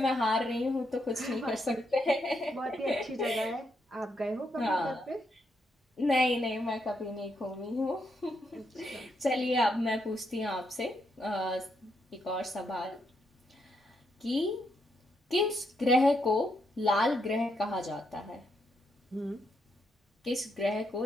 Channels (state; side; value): normal; both; correlation 0.79